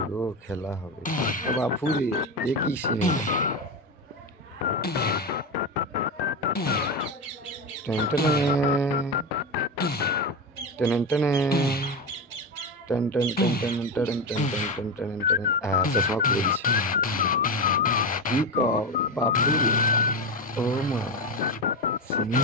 গো, খেলা হবে। বাপুরে এ কি সিনেমা! টেন টেনে টেন টেনে ten ten ten ten ten ten ten ten ten ten. চশমা খুলে দিচ্ছে। কি কও বাপুরে, ও মা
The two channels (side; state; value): both; normal; correlation 0.17